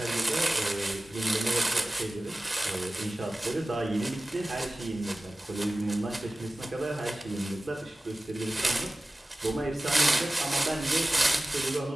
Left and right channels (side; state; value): both; normal; correlation 0.97